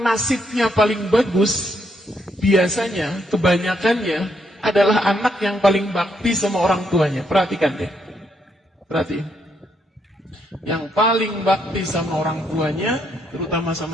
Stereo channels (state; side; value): normal; both; correlation 0.76